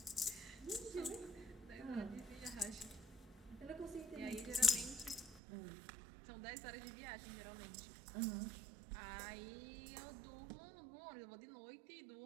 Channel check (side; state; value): left; drops out; at 5.4 s